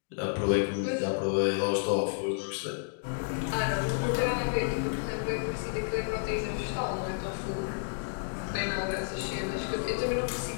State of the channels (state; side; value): silent; right; digital silence